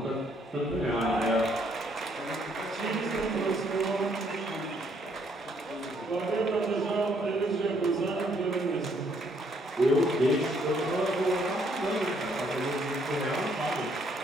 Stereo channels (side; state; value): both; normal; correlation 0.68